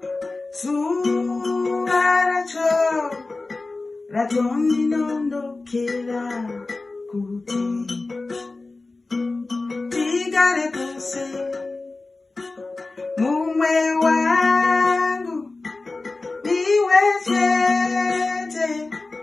zuva racho ratondinondokera kuti tigare tose mumwe wangu niwe chete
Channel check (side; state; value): right; quieter; 3.4 dB